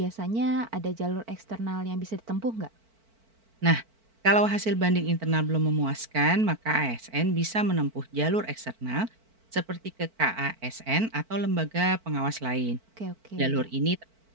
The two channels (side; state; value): left; late; 4.5 ms